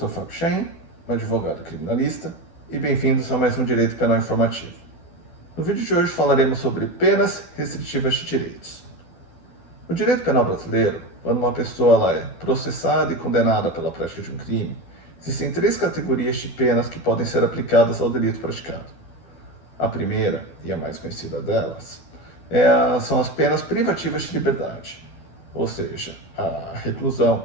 Fábio Chaim, advogado criminalista, e bem-vindos a mais um Direito Penal Informativo. No vídeo de hoje falaremos sobre penas restritivas de direitos. No direito penal brasileiro, quando uma pessoa é processada e condenada pela prática de um crime, existem três categorias de penas que podem ser aplicadas ao delito praticado. A primeira, e a mais conhecida delas, são as penas privativas de liberdade, ou seja, a reclusão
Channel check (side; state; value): right; late; 12 ms